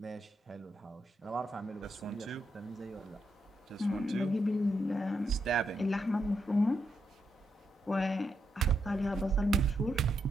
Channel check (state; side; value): normal; both; correlation 0.82